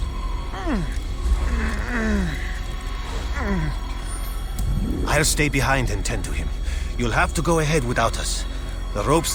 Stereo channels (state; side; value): identical; both; correlation 1.00